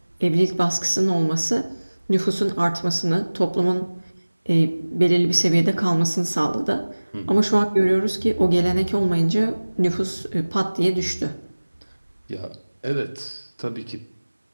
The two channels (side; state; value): both; inverted; correlation -1.00